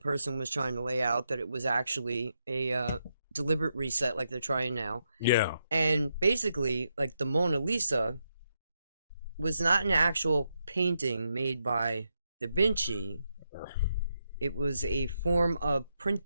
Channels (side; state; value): both; inverted; correlation -0.82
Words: was trying to lay out, that it was actually a deliberate reset, like they're trying now. Yeah. And basically, like the Mona Lisa was not an actual painting made by Da Vinci. It was a form of